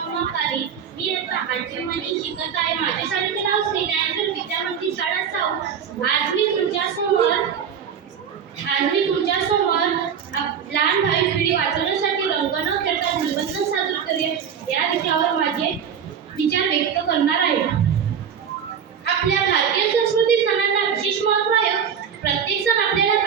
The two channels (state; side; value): quieter; left; 7.7 dB